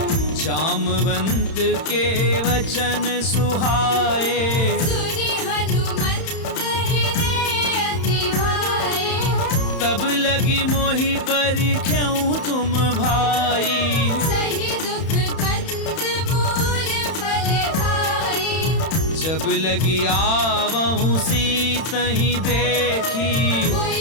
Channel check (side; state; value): right; late; 31 ms